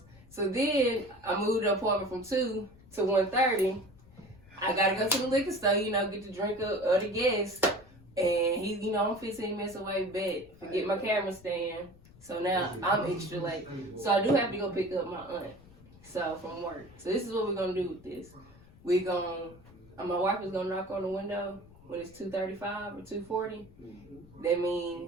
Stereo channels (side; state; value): left; noise; rumble, 23 dB below the sound